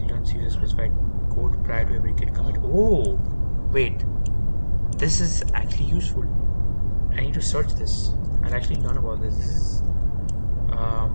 runs user specified code prior to every git commit. Oh, wait, this is actually useful. I need to search this. I'll actually learn about this. This is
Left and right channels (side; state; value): both; inverted; correlation -1.00